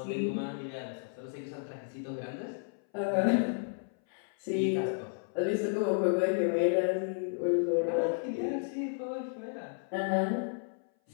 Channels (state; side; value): silent; right; 56 dB below the other